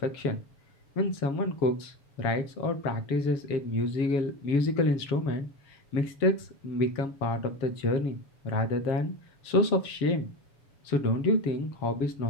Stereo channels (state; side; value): late; right; 7.4 ms